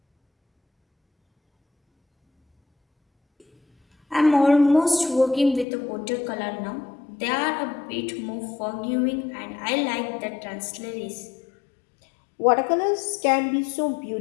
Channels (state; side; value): drops out; right; at 5.7 s